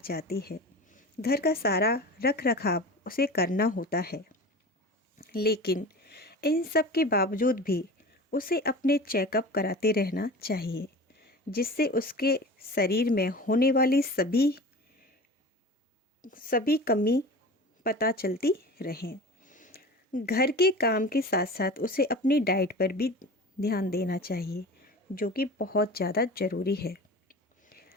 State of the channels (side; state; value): both; normal; correlation 0.35